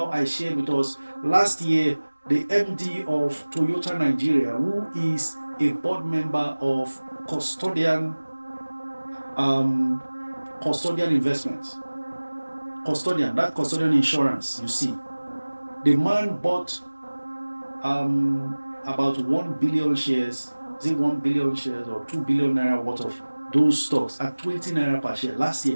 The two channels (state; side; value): inverted; both; correlation -1.00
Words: I shared with us last year the MD of Toyota Nigeria, who is a board member of Custodian Investments. That custodian insurance, you see. The man bought about 1 billion shares, is it 1 billion shares or 2 billion naira worth of those stocks at 20 naira per share last